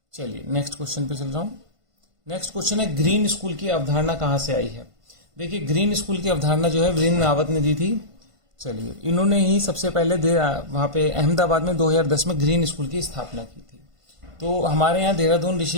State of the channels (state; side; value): late; left; 1.5 ms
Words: चलिए नेक्स्ट क्वेश्चन पे चल रहा हूं। नेक्स्ट क्वेश्चन है, ग्रीन स्कूल की अवधारणा कहां से आई है? देखिए, ग्रीन स्कूल की अवधारणा जो है वीरेंद्र रावत ने दी थी। चलिए, इन्होंने ही सबसे पहले वहां पे अहमदाबाद में 2010 में ग्रीन स्कूल की स्थापना की थी। तो हमारे यहाँ देहरादून